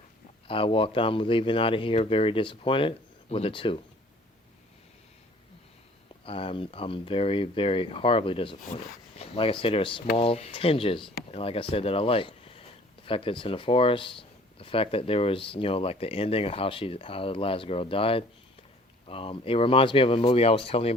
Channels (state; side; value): normal; both; correlation 0.54